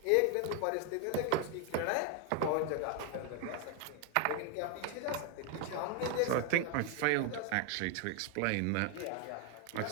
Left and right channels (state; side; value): different; both; correlation 0.01